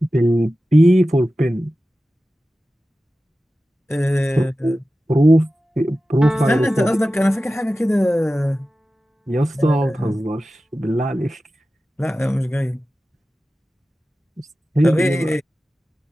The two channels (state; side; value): normal; both; correlation 0.94